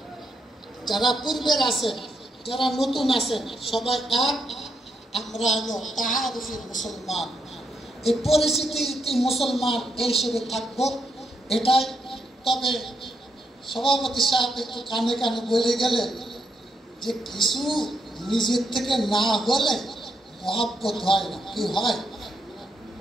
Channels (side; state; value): both; normal; correlation 0.80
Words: যারা পূর্বের আছেন, যারা নতুন আছেন, সবাই এক। আমরা হলো তাহারুফি মুসলমান, এই পরিস্থিতি মুসলমান এই হিসেবে থাকবো, এটাই। তবে সভাপতি সাহেব একটু কানে কানে বলে গেলেন যে কিছু নিজের থেকে না হলে মহব্বত হয় না। কি হয়?